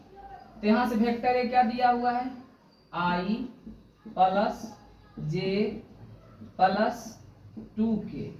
तो यहाँ से वेक्टर a क्या दिया हुआ है, i plus J plus 2k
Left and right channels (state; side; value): identical; both; correlation 1.00